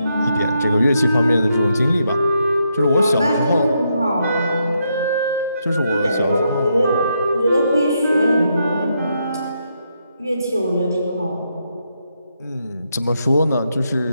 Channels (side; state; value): both; inverted; correlation -0.80